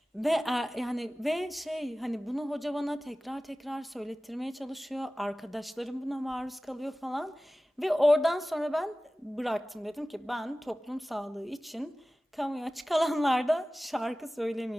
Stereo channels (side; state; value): both; normal; correlation 0.97